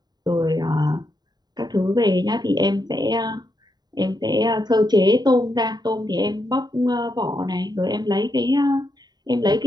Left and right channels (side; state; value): left; late; 0.20 ms